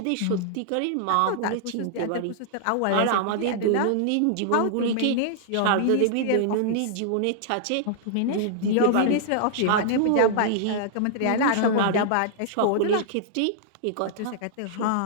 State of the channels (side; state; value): both; different; correlation -0.01